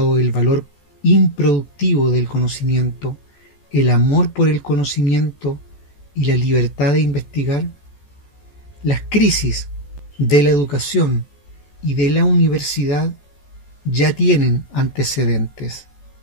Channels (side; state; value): right; late; 14 ms